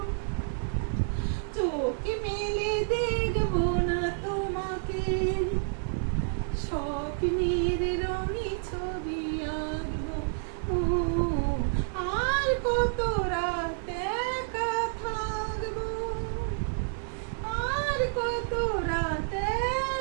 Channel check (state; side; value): silent; left; digital silence